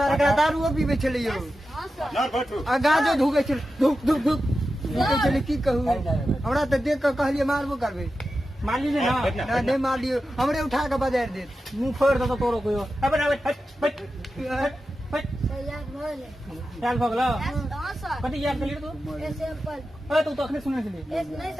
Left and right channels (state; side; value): normal; both; correlation 0.91